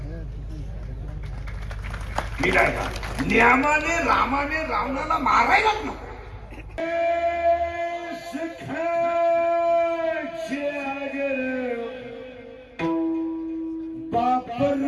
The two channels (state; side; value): identical; both; correlation 1.00